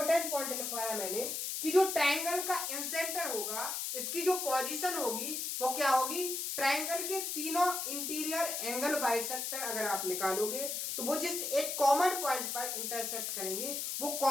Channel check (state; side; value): noise; left; hiss, 2 dB below the sound